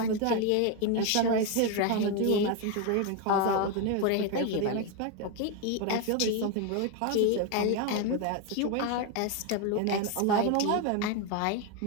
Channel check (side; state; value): both; different; correlation 0.02